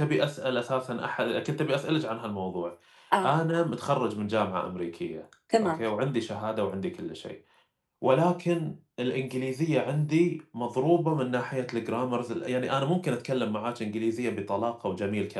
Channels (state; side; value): identical; both; correlation 1.00